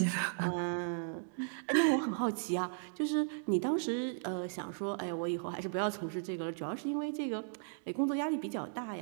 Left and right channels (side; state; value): left; silent; digital silence